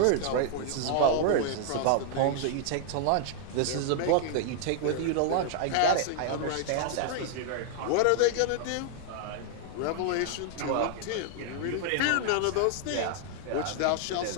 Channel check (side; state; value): both; different; correlation 0.00